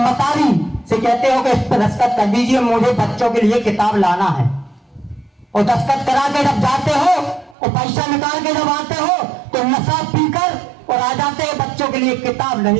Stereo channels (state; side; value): drops out; left; at 7.6 s